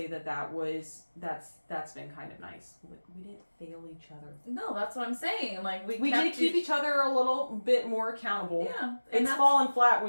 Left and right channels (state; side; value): inverted; both; correlation -1.00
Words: that's been kind of nice. We didn't fail each other. No, that's what I'm saying. Like we did keep each other a little bit more accountable. Yeah, it's fallen flat